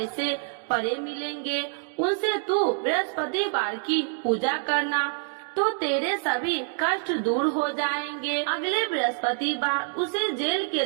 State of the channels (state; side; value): silent; left; digital silence